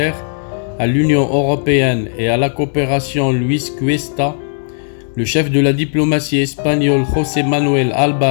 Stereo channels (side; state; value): right; silent; digital silence